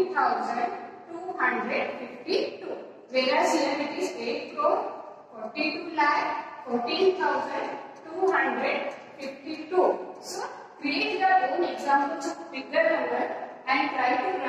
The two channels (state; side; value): identical; both; correlation 1.00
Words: Whereas here it is 8 crore 42,14,252. So create your own examples of bigger number and try to